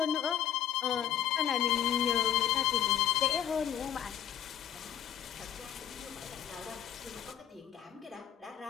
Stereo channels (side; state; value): right; quieter; 10.5 dB